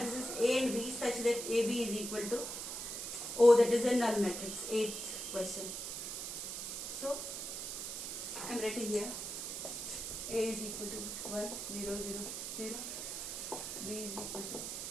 A and B such that AB is equal to O, that is a null matrix. 8th question. So I am writing here A is equal to 1 0 0 0, B is equal to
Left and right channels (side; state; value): right; noise; hiss, 5 dB below the sound